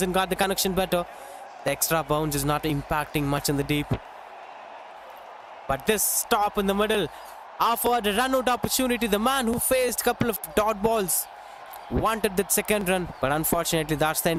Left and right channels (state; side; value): identical; both; correlation 1.00